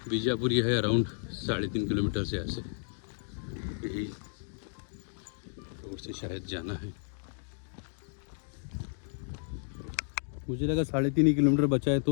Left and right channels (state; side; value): silent; right; digital silence